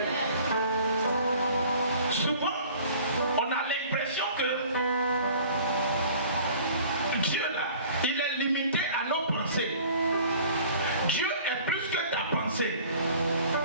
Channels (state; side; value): inverted; both; correlation -0.49